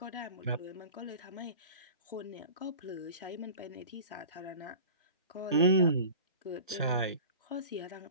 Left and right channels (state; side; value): inverted; both; correlation -0.40